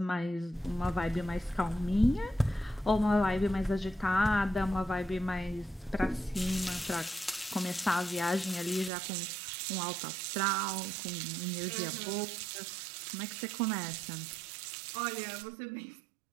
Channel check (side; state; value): left; drops out; at 8.9 s